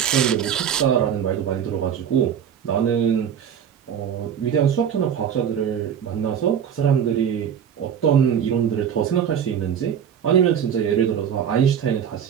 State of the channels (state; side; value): quieter; left; 8.5 dB